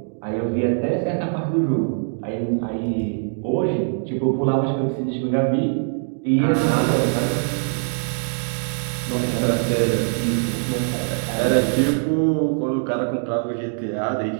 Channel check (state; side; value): silent; left; digital silence